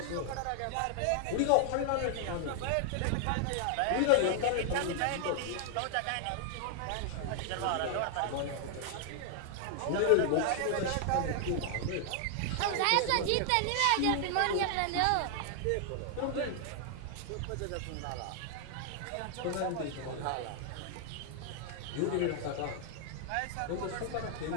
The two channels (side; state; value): both; different; correlation 0.00